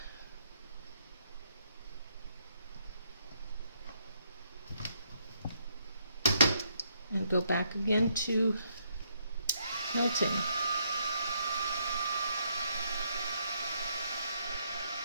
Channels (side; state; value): both; inverted; correlation -0.74